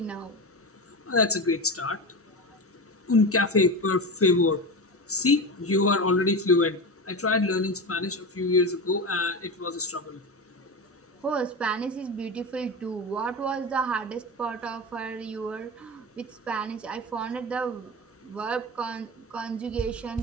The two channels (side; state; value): both; normal; correlation 0.23